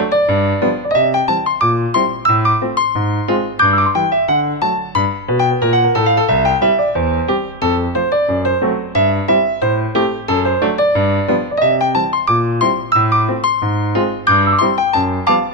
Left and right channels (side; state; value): right; noise; hum, 26 dB below the sound